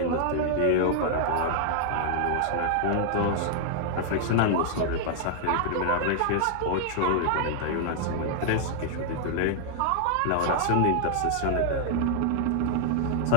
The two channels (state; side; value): different; both; correlation -0.01